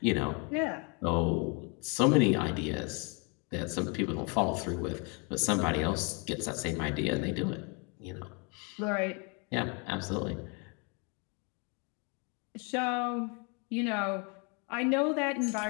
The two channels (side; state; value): right; quieter; 33.8 dB